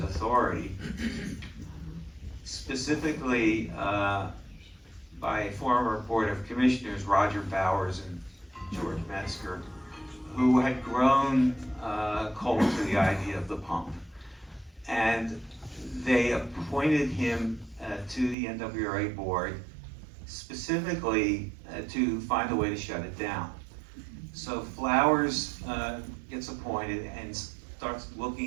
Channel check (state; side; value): drops out; left; at 18.4 s